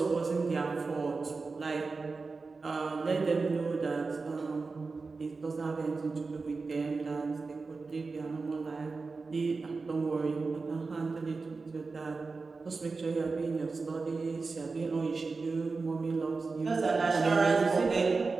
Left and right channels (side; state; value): left; quieter; 4.2 dB